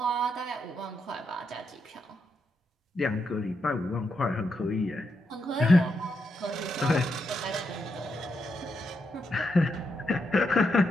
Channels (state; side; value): normal; both; correlation 0.82